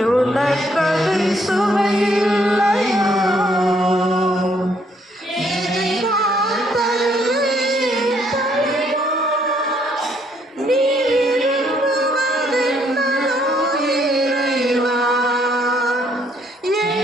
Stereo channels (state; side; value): normal; both; correlation 0.68